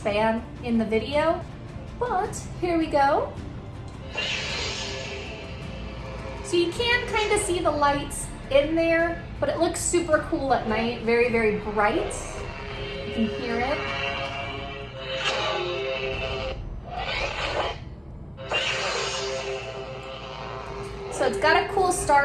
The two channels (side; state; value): both; identical; correlation 1.00